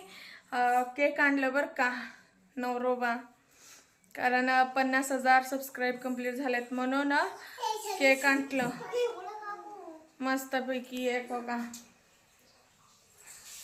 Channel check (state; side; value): identical; both; correlation 1.00